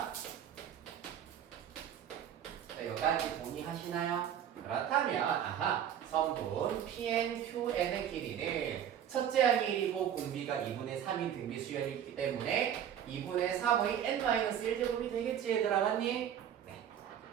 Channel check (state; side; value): quieter; left; 9.6 dB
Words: 자, 여기까지 동의하시나요? 그렇다면 성분 PNQN의 길이는 첫째 항의 1이고 공비가 2분의 3인 등비 수열이기 때문에 2분의 3의 n-1제곱이 되겠지 얘들아, 맞니? 네.